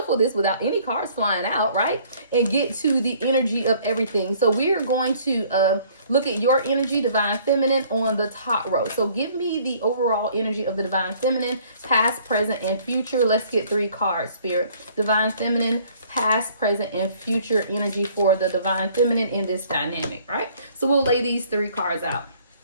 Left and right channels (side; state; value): both; inverted; correlation -0.58